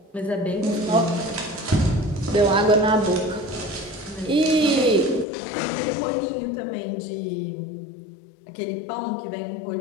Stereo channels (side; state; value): right; drops out; at 5.2 s